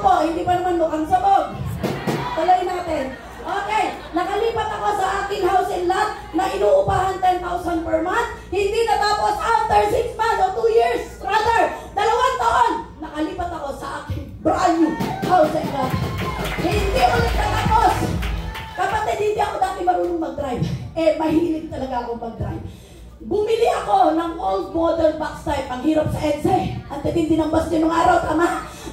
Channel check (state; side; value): identical; both; correlation 1.00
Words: po, hindi pa naman mukhang sabog. Tuloy natin. Okay, nakalipat ako sa aking house and lot na inuupahan 10,000 per month. Hindi natapos after 6 months o 2 years. Rather, 2 taon, nakalipat ako sa aking brand new house and lot. Hindi ulit natapos. Kapatid, hindi ako dati marunong mag-drive. Mahilig talaga ako mag-drive. Bumili ako ng old model box type. Ang hirap sa EDSA. Ang titindi ng bus nung araw, tama?